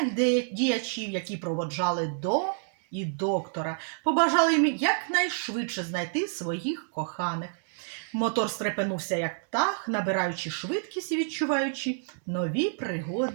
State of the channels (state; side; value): silent; left; digital silence